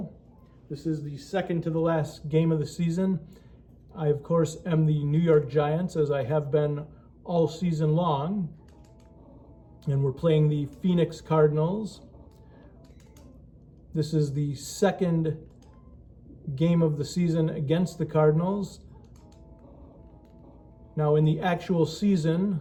This is the second to the last game of the season. I, of course, am the New York Giants, as I have been all season long. And we're playing the Phoenix Cardinals. This is the second game of the season against the Cardinals. Now, in the actual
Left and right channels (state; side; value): identical; both; correlation 1.00